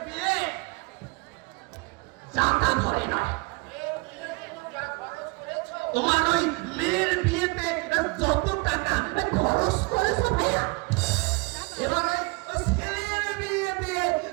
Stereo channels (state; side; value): quieter; left; 27.8 dB